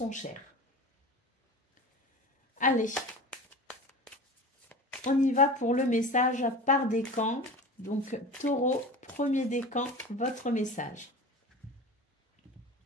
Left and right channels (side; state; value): both; normal; correlation 0.33